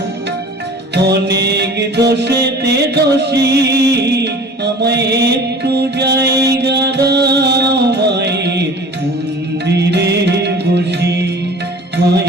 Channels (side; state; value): both; normal; correlation 0.43